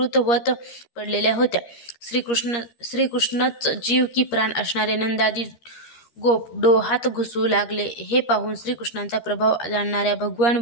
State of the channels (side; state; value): right; late; 13 ms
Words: पडलेल्या होत्या. श्रीकृष्णच जीव की प्राण असणारे नंदादी गोप डोहात घुसू लागले. हे पाहून श्रीकृष्णांचा प्रभाव जाणणाऱ्या भगवान